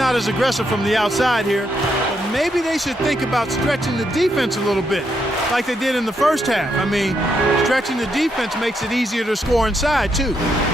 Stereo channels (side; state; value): both; normal; correlation 0.79